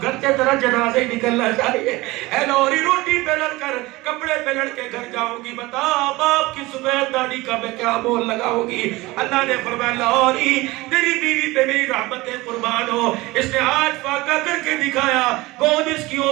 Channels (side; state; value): left; quieter; 20.7 dB